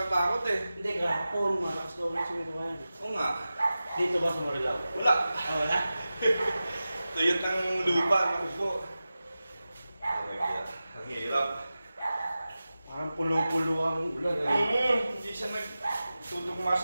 eh. Hindi, kahapon, malakas daw ulit si may kuhay. Oo nga. Dito ba sa Marilao? Wala. Ah, wala? Tuyot ng lupa, ng upo. Ang hirap. Parang pulo-pulo ang ulan eh. Hindi siya nagtutugma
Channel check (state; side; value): inverted; both; correlation -0.95